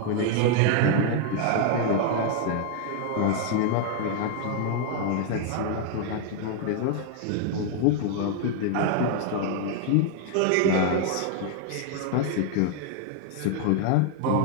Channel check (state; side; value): different; both; correlation 0.00